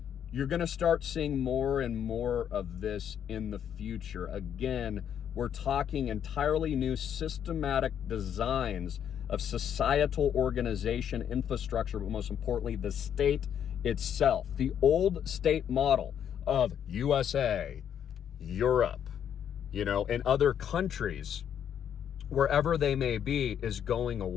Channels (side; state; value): right; quieter; 9.0 dB